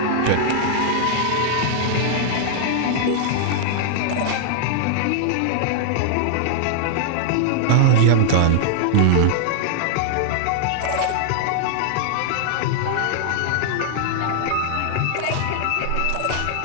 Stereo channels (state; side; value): different; both; correlation -0.01